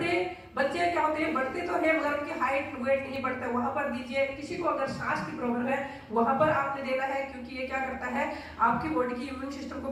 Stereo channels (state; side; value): identical; both; correlation 1.00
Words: बच्चे क्या होते हैं, बढ़ते तो है मगर उनकी हाइट वेट नहीं बढ़ता, वहां पर दीजिए। किसी को अगर सांस की प्रॉब्लम है वहां पर आपने देना है, क्योंकि ये क्या करता है आपकी बॉडी की इम्यून सिस्टम को